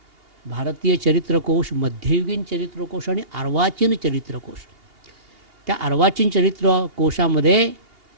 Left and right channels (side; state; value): left; late; 2.8 ms